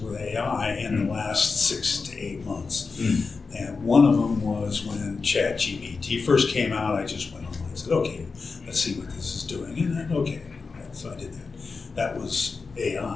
AI in the last 6 to 8 months. And one of them was when ChatGPT first came out. I just went online and said, okay, let's see what this is doing. And then, okay, so I did that. That was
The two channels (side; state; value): right; quieter; 4.5 dB